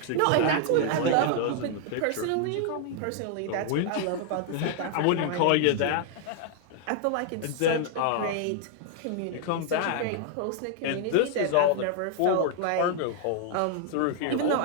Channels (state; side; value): different; both; correlation 0.00